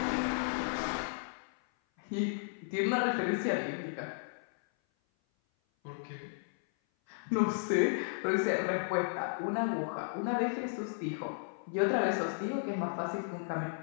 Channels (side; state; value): right; silent; 55 dB below the other